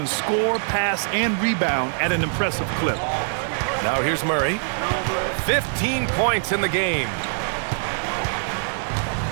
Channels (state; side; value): silent; left; digital silence